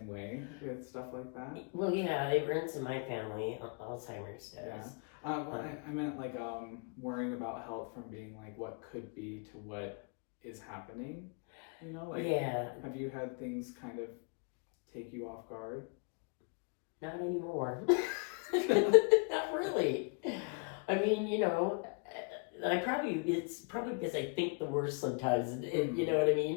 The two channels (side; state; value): right; quieter; 38.2 dB